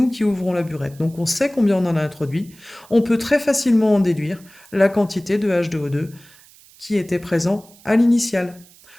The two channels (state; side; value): noise; right; hiss, 25 dB below the sound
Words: qui ouvrons la burette, donc on sait combien on en a introduit, on peut très facilement en déduire la quantité de H2O2 qui était présent à l'initiale.